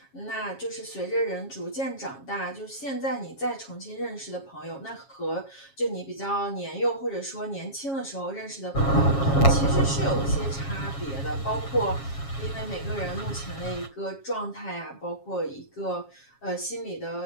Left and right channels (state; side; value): late; right; 7.3 ms